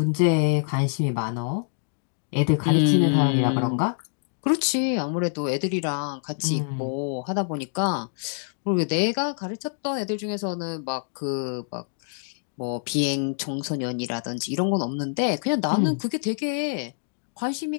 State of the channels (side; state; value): right; silent; digital silence